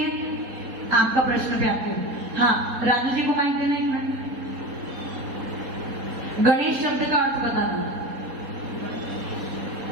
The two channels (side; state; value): left; late; 4.1 ms